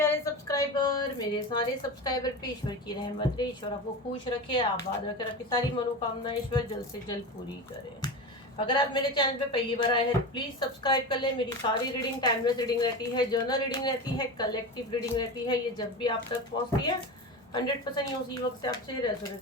subscriber, मेरे सारे सब्सक्राइबर पे ईश्वर की रहमत रहे, ईश्वर आपको खुश रखे, आबाद रखे, आपकी सारी मनोकामना ईश्वर जल्द से जल्द पूरी करे। अगर आप मेरे चैनल पे पहली बार आए हैं प्लीज सब्सक्राइब कर ले। मेरी सारी रीडिंग टाइमलेस रीडिंग रहती है, जर्नल रीडिंग रहती है, कलेक्टिव रीडिंग रहती है। ये जब भी आप तक पहुंचती है 100% उसी वक्त से आपसे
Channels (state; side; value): normal; both; correlation 0.26